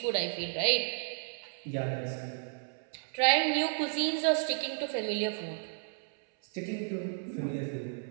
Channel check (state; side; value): silent; left; 56 dB below the other